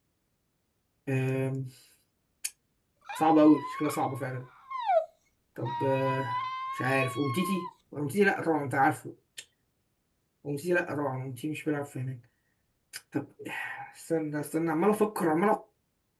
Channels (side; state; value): both; identical; correlation 1.00